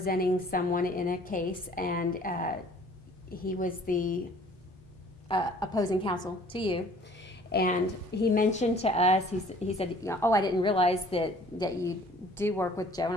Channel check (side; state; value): both; normal; correlation 0.53